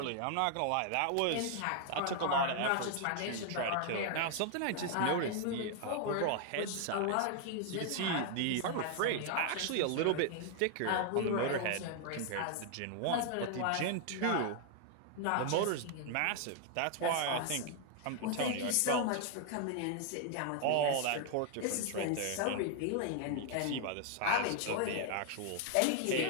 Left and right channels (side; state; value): both; different; correlation 0.00